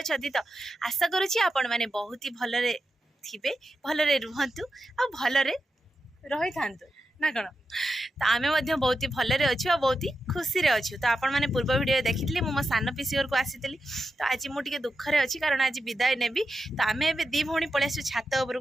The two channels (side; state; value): both; normal; correlation 0.89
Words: तो आशा करूची आपण माने बहुत ही भलरे थिबे भलरे रुहंतु आ भलरे रही थांतु ना कण तो आमे मध्य बहुत ही भलरे अछु आ बहुत ही खुशी रे अछु तो आपण माने पूर्व वीडियो देखितली मो सान पिसी घर को आसीतली तो आज मु टिके दुख रे अछि कारण आज विदाय नेबी तो आमे एबे दी भौणी पळे आसु छात ऊपर